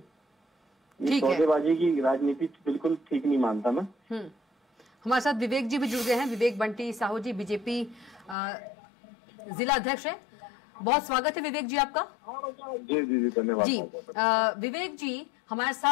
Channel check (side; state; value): right; drops out; at 8.3 s